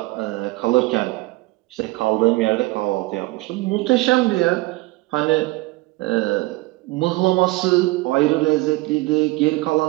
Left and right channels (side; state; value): left; quieter; 21.0 dB